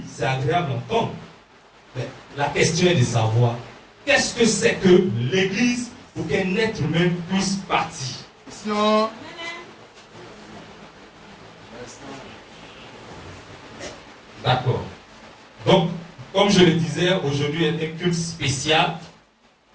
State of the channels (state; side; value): identical; both; correlation 1.00